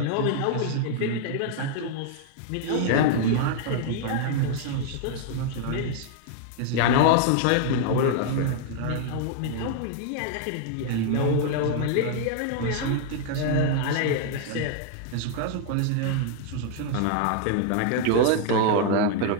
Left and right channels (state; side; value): different; both; correlation 0.00